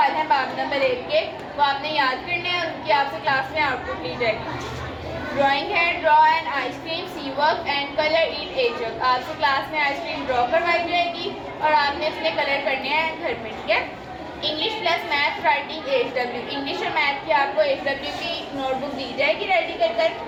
हैं बाब नंबर 1 के, वो आपने याद करने हैं और उनकी आपसे क्लास में आउटपुट ली जाएगी। ड्राइंग है, draw an ice cream, see work and colour it a jug. आपसे क्लास में आइसक्रीम ड्रॉ करवाई जाएगी और आपने उसमें कलर करने हैं घर में, ठीक है। English plus math writing HW। English और मैथ की आपको HW की नोटबुक दी जाएगी रेडी कर।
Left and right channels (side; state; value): both; identical; correlation 1.00